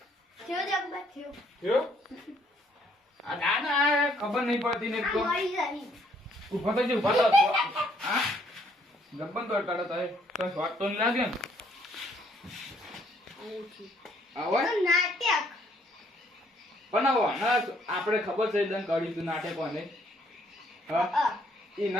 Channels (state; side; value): normal; both; correlation 0.67